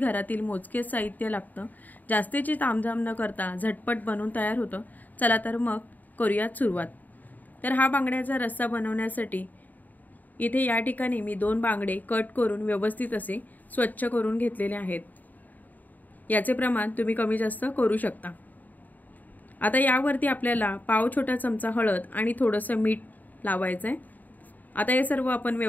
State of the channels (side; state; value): right; late; 0.083 ms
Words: मोजकेच साहित्य लागतं। जास्तीची तामझाम न करता झटपट बनवून तयार होतं। चला तर मग करूयात सुरुवात। तर हा बांगड्याचा रस्सा बनवण्यासाठी इथे या ठिकाणी मी 2 बांगडे कट करून व्यवस्थित असे स्वच्छ करून घेतलेले आहेत। याचे प्रमाण तुम्ही कमी जास्त करू शकता। आता यावरती आपल्याला पाव छोटा चमचा हळद आणि थोडंसं मीठ लावायचं आहे। आता हे सर्व आपण